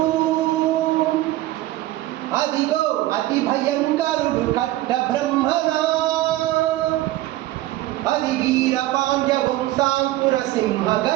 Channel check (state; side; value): quieter; left; 16.1 dB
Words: అదిగో అతి భయంకరుడు కట్ట బ్రహ్మణ. అది వీర పాండ్య వంశాంకుర సింహ